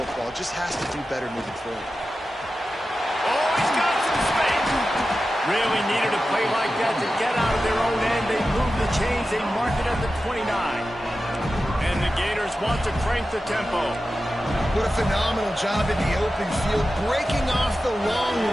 It just has to do better moving forward. Oh, he's got some space. Really needed a play like that to get out of their own end. They move the chains. They mark it at the 29. And the Gators want to crank the tempo. What a phenomenal job in the open field, breaking off the long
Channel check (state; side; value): normal; both; correlation 0.93